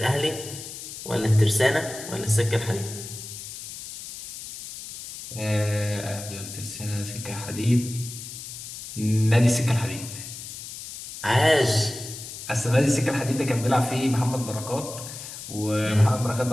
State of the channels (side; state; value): left; noise; hiss, 11 dB below the sound